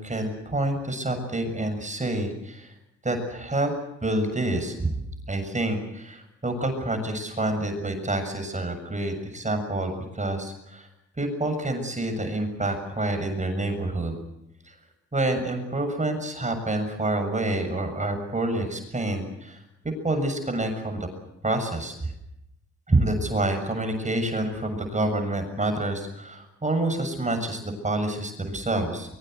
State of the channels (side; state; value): both; normal; correlation 0.50